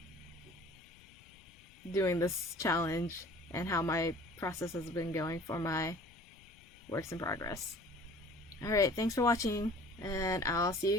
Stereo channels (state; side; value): noise; left; rumble, 25 dB below the sound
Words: doing this challenge and how my process has been going for my works in progress. Alright, thanks for watching, and I'll see